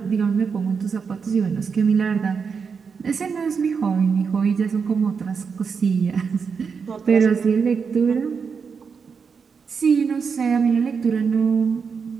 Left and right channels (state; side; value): quieter; left; 5.8 dB